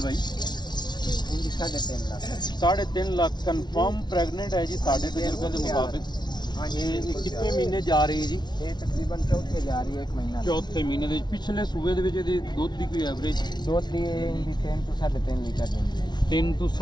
ਭਾਈ? इनकी 3.5 लाख। 3.5 ਲੱਖ ਕਨਫਰਮ ਪ੍ਰੈਗਨੈਂਟ ਹੈ ਜੀ ਸਾਡੇ ਤਜਰਬੇ ਦੇ ਮੁਤਾबिक। हाँ जी। ਇਹ ਕਿੰਨੇ ਮਹੀਨੇ ਜਾ ਰਹੀ ਹੈ ਜੀ? ये तकरीबन चौथे जा रही है, 1 महीना। ਚੌਥੇ ਮਹੀਨੇ ਦੇ ਵਿੱਚ। ਪਿਛਲੇ ਸੂਏ ਦੇ ਵਿੱਚ ਇਹਦੀ ਦੁੱਧ ਦੀ ਕੋਈ ਐਵਰੇਜ? दूध दी इनकी 3 तो 3.5 लीटर देंगे। 3 ਤੋਂ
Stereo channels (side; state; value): right; late; 0.20 ms